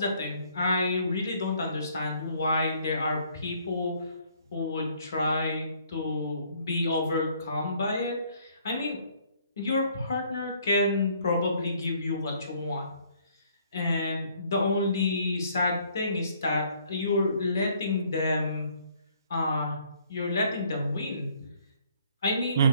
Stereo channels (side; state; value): both; inverted; correlation -0.63